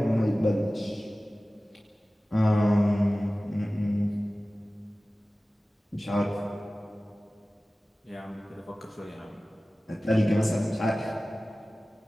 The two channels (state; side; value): normal; both; correlation 0.97